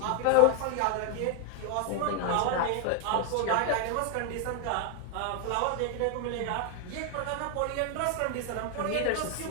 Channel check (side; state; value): both; different; correlation 0.00